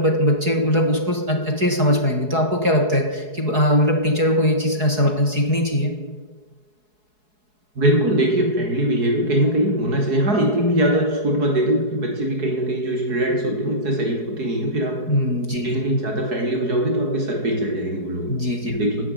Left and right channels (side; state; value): left; late; 4.7 ms